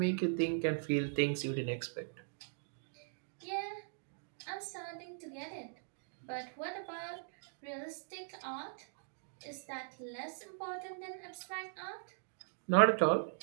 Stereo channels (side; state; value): left; silent; digital silence